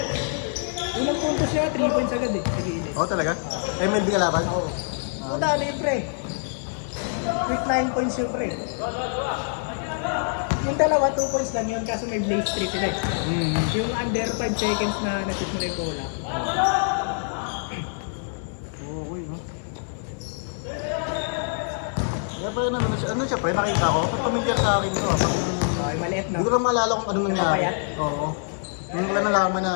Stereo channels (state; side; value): silent; right; digital silence